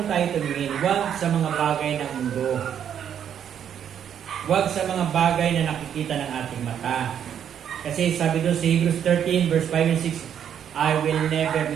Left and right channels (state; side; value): quieter; left; 9.0 dB